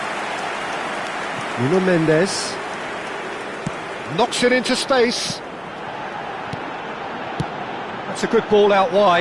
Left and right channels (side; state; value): both; identical; correlation 1.00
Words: Nuno Mendes. Knocks it into space. That's a good ball out